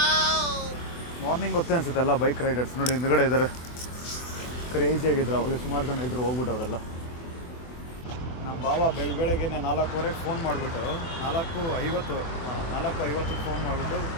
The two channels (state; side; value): late; right; 24 ms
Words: ಮಾರ್ನಿಂಗ್ ಗೊತ್ತೇ ಅನಿಸುತ್ತೆ ಎಲ್ಲ ಬೈಕ್ ರೈಡರ್ಸ್ ನೋಡಿ ಹಿಂದ್ಗಡೆ ಇದ್ದಾರೆ. ಕ್ರೇಜಿಯಾಗಿದ್ರು ಅವಾಗ, ಸುಮಾರು ಜನ ಇದ್ದರು, ಹೋಗ್ಬಿಟ್ಟವರೆಲ್ಲ. ನಮ್ಮ ಬಾವ ಬೆಳಗ್ಗೆಗೆ 4:15 ಫೋನ್ ಮಾಡಿಬಿಟ್ಟು 4:50 ಫೋನ್ ಮಾಡಿಬಿಟ್ಟು